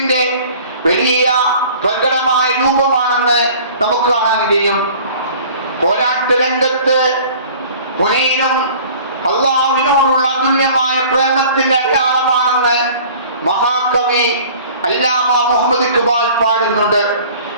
വലിയ പ്രകടമായ രൂപമാണെന്ന് നമുക്ക് കാണാൻ കഴിയും. പോരാട്ട രംഗത്ത് ഹുനൈനും അല്ലാഹുവിനോടുള്ള അതുല്യമായ പ്രേമത്തിന്റെ അടയാളമാണെന്ന് മഹാകവി അല്ലാമ മുഹമ്മദ് ഇഖ്ബാൽ പാടുന്നുണ്ട്.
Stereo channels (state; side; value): inverted; both; correlation -0.47